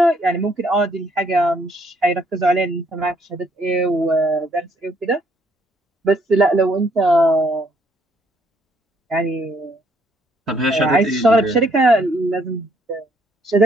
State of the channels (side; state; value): both; normal; correlation 0.68